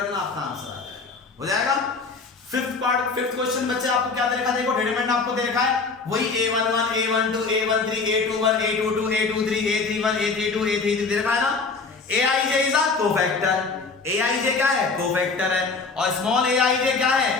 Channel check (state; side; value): quieter; right; 4.4 dB